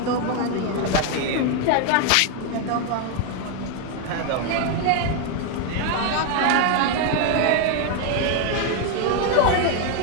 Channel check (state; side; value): different; both; correlation 0.01